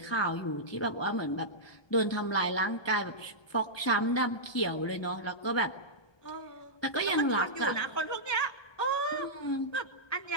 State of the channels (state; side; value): late; right; 1.2 ms